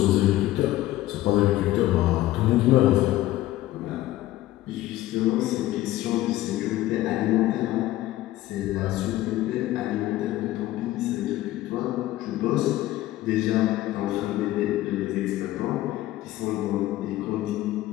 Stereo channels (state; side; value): quieter; right; 15.6 dB